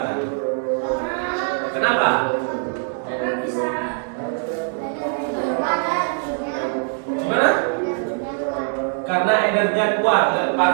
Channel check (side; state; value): left; silent; 61 dB below the other